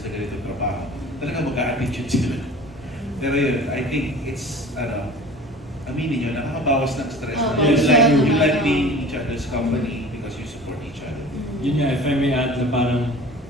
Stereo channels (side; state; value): both; normal; correlation 0.41